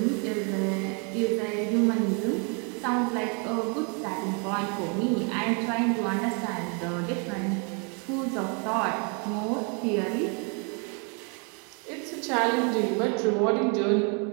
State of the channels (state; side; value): quieter; left; 36.1 dB